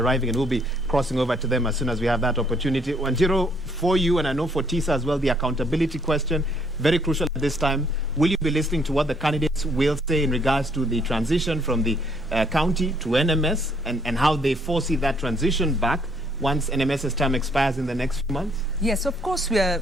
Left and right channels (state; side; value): normal; both; correlation 0.67